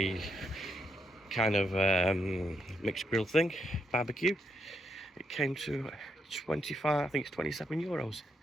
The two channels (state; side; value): normal; both; correlation 0.79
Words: kind of mixed grill thing, barbecue. It came to 25, I think it's 27 euros